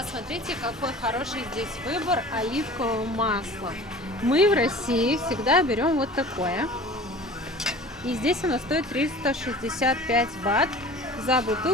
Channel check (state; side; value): normal; both; correlation 0.42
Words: какой хороший здесь выбор оливкового масла. Мы в России всегда берем вот такое. И здесь оно стоит 365 бат за